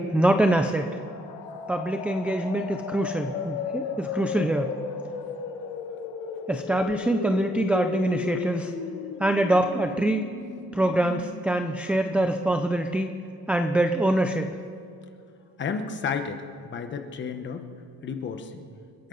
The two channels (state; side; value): normal; both; correlation 0.77